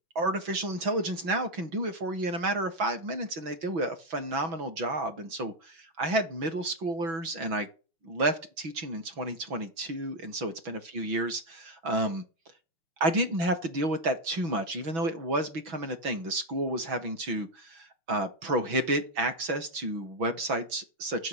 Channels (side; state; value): left; late; 6.1 ms